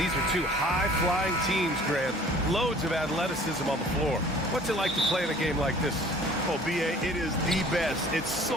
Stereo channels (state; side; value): normal; both; correlation 0.50